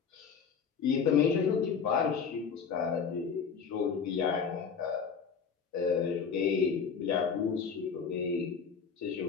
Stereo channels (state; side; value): quieter; right; 6.3 dB